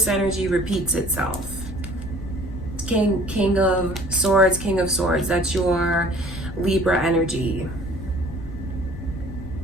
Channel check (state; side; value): noise; left; rumble, 11 dB below the sound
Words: energy repeats itself. King of Swords, King of Swords. That's your Libra energy.